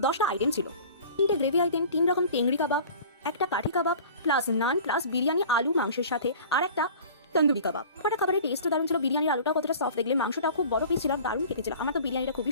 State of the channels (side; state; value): both; inverted; correlation -0.43